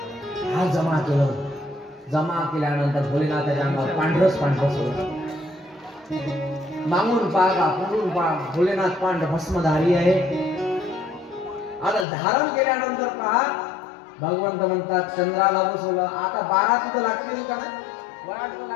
हा जमा केलं. जमा केल्यानंतर भोलेनाथाच्या अंगावर पांढरच होतं. मागून पागा पुढून पाग भोलेनाथ पांढर भस्मधारी आहे. आता धारण केल्यानंतर पहा भगवंत म्हणतात चंद्राला बसवलं. आता 12 तिथं लागतील का नाही? वराड तर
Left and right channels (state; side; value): drops out; right; at 12.1 s